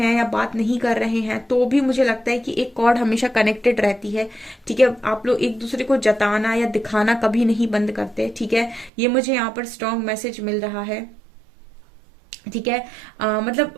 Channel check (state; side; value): drops out; left; at 8.9 s